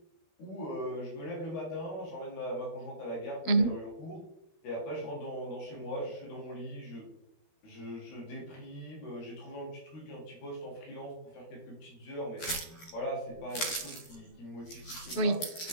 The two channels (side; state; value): right; late; 12 ms